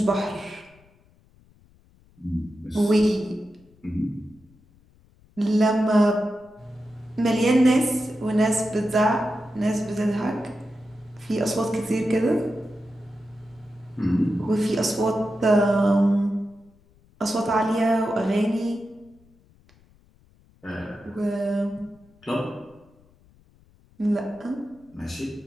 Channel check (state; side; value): noise; left; rumble, 30 dB below the sound